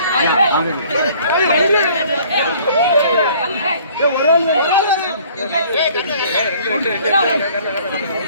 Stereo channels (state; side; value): inverted; both; correlation -0.55